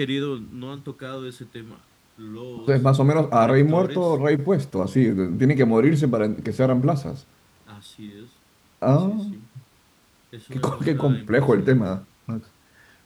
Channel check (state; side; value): identical; both; correlation 1.00